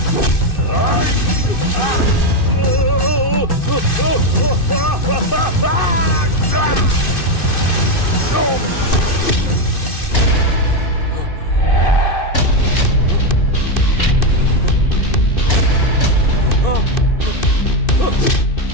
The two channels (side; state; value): right; late; 2.6 ms